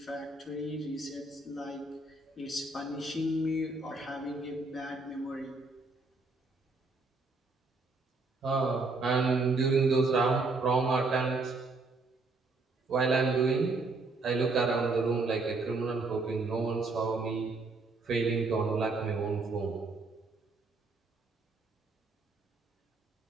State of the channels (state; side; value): quieter; left; 3.5 dB